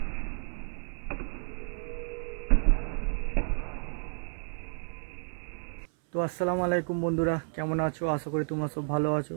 তো আসসালামু আলাইকুম বন্ধুরা, কেমন আছো? আশা করি তোমরা সব ভালো আছো।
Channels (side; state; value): left; silent; 57 dB below the other